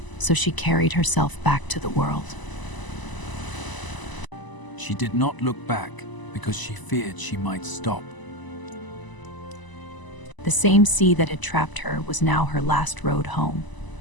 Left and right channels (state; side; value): late; right; 1.0 ms